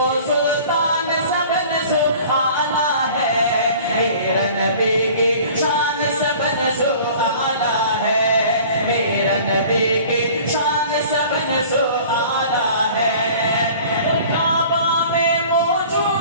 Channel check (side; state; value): both; inverted; correlation -0.46